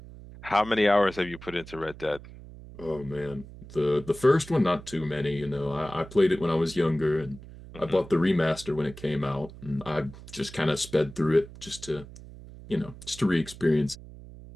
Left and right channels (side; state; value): right; noise; hum, 16 dB below the sound